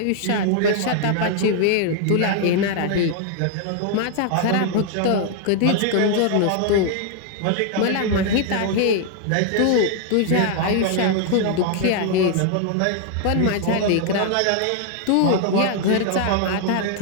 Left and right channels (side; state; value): both; different; correlation 0.00